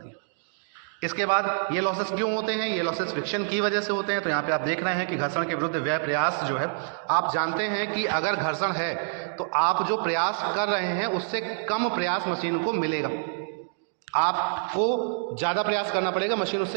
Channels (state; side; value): silent; left; digital silence